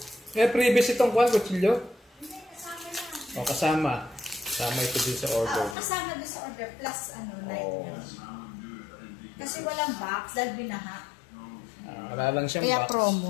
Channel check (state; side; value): drops out; right; at 5.8 s